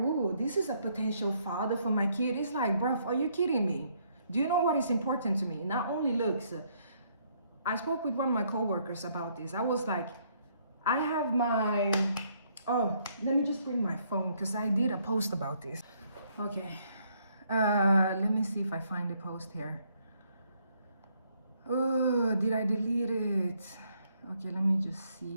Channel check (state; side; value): inverted; both; correlation -0.70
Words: this is a potential father for my kid. It's like, bruv, are you kidding me? Do you know what is important to me? Not only looks. I spoke with one of my coworkers about this. I was like, I have my, oh, let me just bring my phone because I did a post about this. Okay, let me see if I find the post here. Oh, did I delete it? Okay, let me just